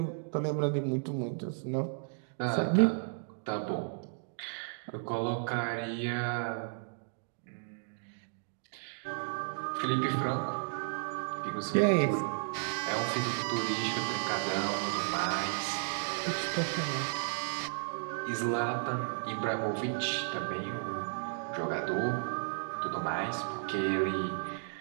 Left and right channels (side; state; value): left; silent; digital silence